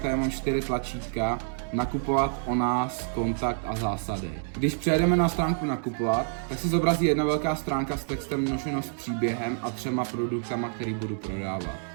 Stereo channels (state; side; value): silent; left; digital silence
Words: tady mám 4 tlačítka. Nakupovat, o nás, kontakt a zásady. Když přejdeme na stránku nakupovat, tak se zobrazí jedna velká stránka s textem Nošeno s příběhem a 3 produktama, který budu prodávat.